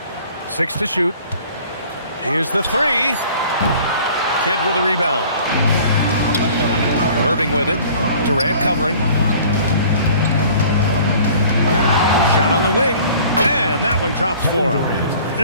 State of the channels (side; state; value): both; inverted; correlation -0.50